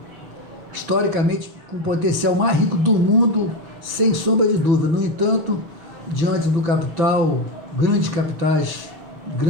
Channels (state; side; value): late; left; 6.0 ms